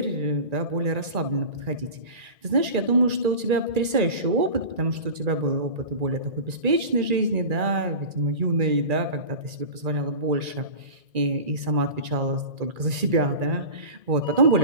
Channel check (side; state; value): left; late; 2.4 ms